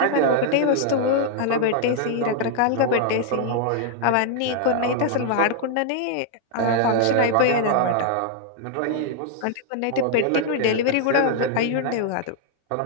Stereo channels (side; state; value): both; different; correlation -0.01